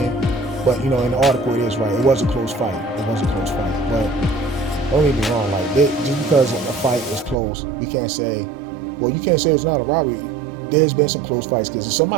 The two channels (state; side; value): drops out; left; at 7.4 s